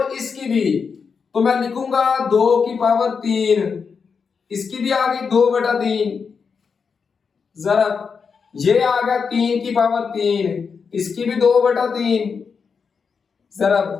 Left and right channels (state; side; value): quieter; right; 5.7 dB